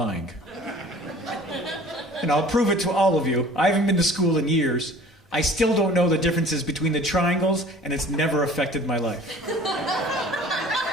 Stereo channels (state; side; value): normal; both; correlation 0.47